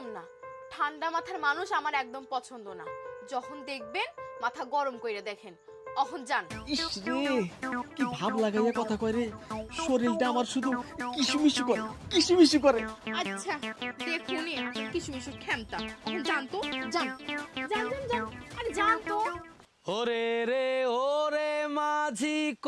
না, ঠান্ডা মাথার মানুষ আমার একদম পছন্দ না। যখন দেখবেন মাথা গরম কইরা দেখেন, অহন যান। ইস রে, কি ভাব লাগাইয়া কথা কয় রে, শরীরটা আমার শুধু কিসুমিসু করে, কিসুমিসু করে। আচ্ছা দেখুনি, কিশমিশ খেমতা। অহন যান তো, যান যান যান যান, আরে যান তো। ওরে রে ওরে মাঝি,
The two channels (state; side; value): identical; both; correlation 1.00